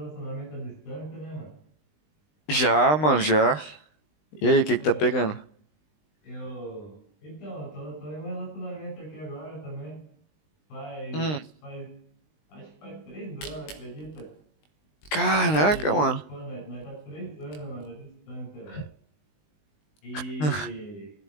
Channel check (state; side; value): late; right; 20 ms